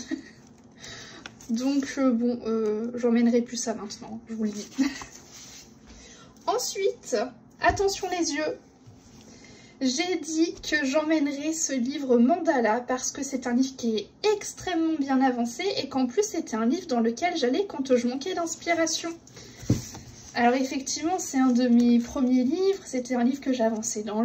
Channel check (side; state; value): both; identical; correlation 1.00